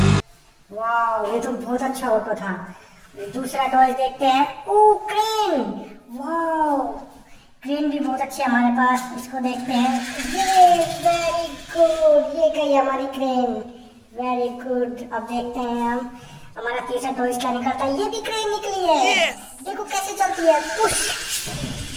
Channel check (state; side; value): identical; both; correlation 1.00